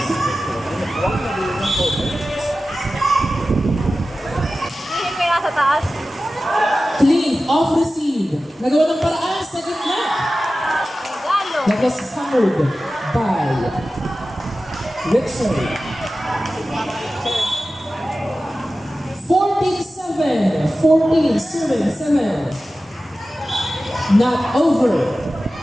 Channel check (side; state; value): both; normal; correlation 0.95